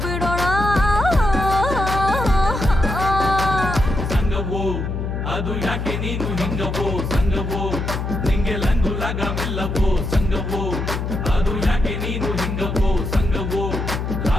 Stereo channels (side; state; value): left; noise; hum, 3 dB below the sound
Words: ಸಂಗವೋ ಅದು ಯಾಕೆ ನೀನು ಹಿಂಗವೋ ಸಂಗವೋ ನಿಂಗೆ ಲಂಗು ಲಗವಿಲ್ಲವೋ ಸಂಗವೋ ಅದು ಯಾಕೆ ನೀನು ಹಿಂಗವೋ ಸಂಗವೋ